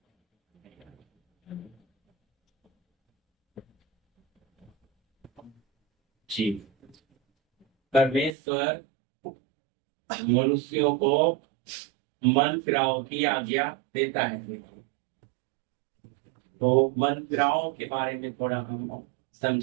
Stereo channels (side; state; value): left; drops out; at 8.3 s